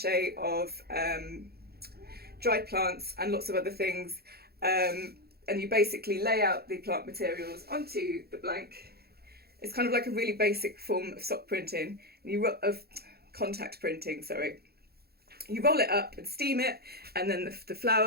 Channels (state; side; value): late; left; 0.46 ms